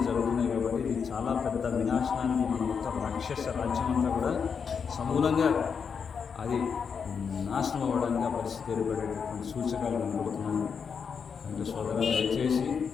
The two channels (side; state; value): right; quieter; 6.3 dB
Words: జరుగుతున్నాయి కాబట్టి ఇది చాలా పెద్ద వినాశనానికి మన మొత్తం రాక్షస రాజ్యం అంతా కూడా సమూలంగా అది నాశనం అవ్వడానికి ఆ పరిస్థితి ఏర్పడేటటువంటి సూచకాలు కనబడుతున్నాయి. అంటే సోదరులు దయచేసి